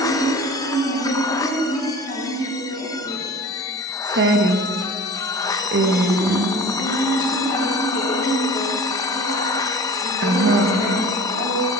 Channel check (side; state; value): both; normal; correlation 0.40